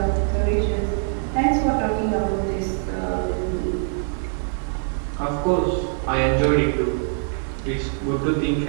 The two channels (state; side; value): silent; left; 63 dB below the other